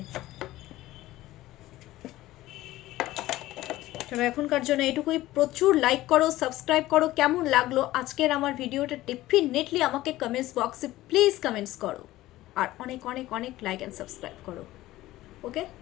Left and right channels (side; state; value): right; quieter; 16.3 dB